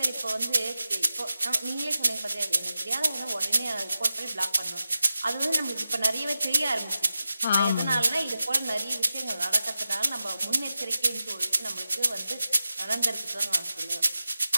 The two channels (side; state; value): both; inverted; correlation -0.91